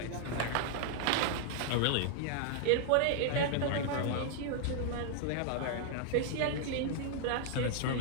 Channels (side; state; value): both; different; correlation 0.00